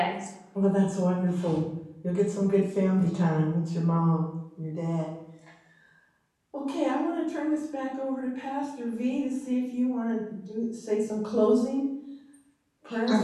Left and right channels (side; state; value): both; identical; correlation 1.00